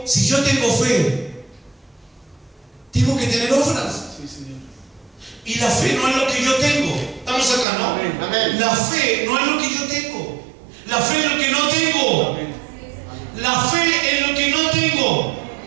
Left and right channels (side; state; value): left; drops out; at 7.7 s